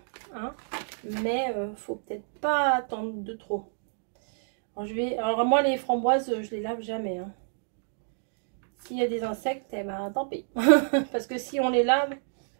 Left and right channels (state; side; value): silent; left; digital silence